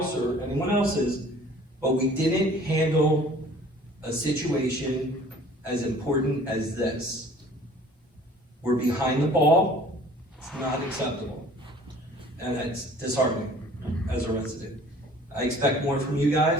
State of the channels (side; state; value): both; normal; correlation 0.51